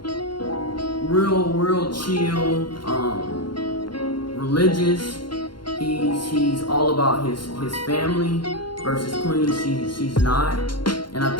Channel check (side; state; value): right; late; 0.72 ms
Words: real chill, religious. He's all about his family versus Queen. She's not, and I